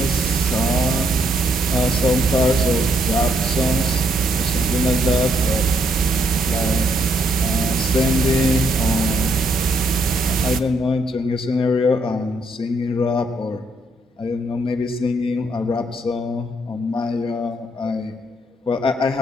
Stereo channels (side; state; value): both; normal; correlation 0.73